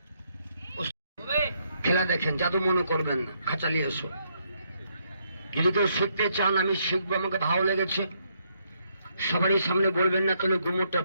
খেলা দেখেন, জাদু মনে করবেন না, খাঁচালি এসো। যদি কেউ শিখতে চান আমি শিখবো, আমাকে ভালো লেগেছে, সবারই সামনে বলবেন না, তাহলে গুমরটা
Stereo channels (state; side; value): inverted; both; correlation -0.74